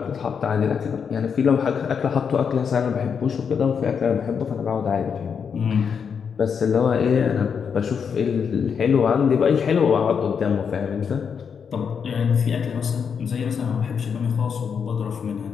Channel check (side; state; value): right; quieter; 6.7 dB